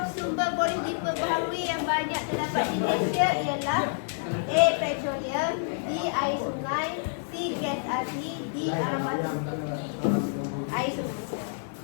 sumber boleh diperbaharui yang banyak terdapat di Malaysia ialah A. Petroleum. B. Air sungai. C. Gas asli. D. Alam batu. Air sungai.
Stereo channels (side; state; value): right; silent; 59 dB below the other